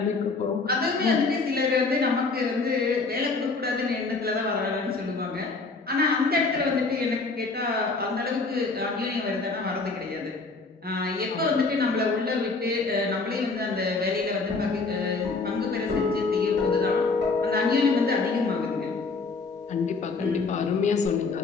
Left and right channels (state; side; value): quieter; right; 4.0 dB